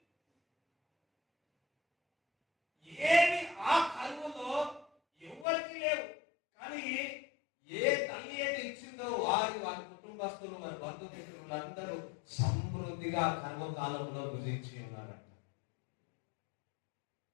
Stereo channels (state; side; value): drops out; right; at 5.5 s